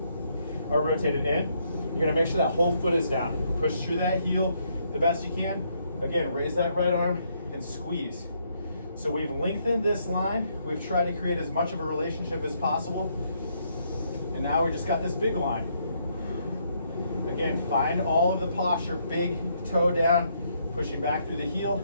or rotate it in. You're gonna make sure that whole foot is down. Push through that heel the best you can. Again, raise that right arm and squeeze. So we've lengthened this line. We've tried to create as much of a relationship as possible. And now we just got this big line. Again, find all of the posture, big toe down, pushing back through the heel,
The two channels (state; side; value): inverted; both; correlation -0.73